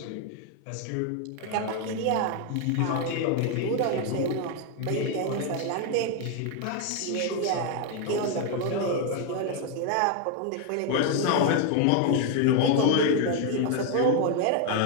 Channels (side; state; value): both; different; correlation 0.01